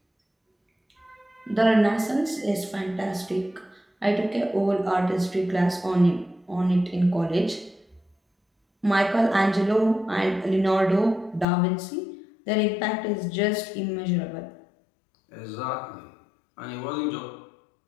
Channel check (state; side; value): drops out; right; at 11.5 s